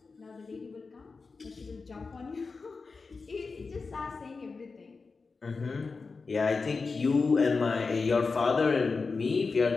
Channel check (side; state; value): right; quieter; 4.4 dB